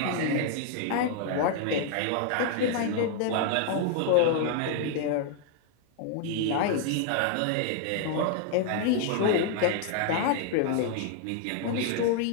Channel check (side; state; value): both; different; correlation 0.00